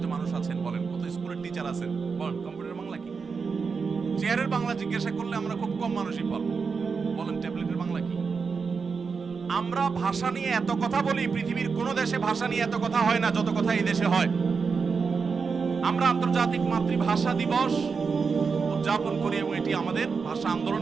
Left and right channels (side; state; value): left; quieter; 5.2 dB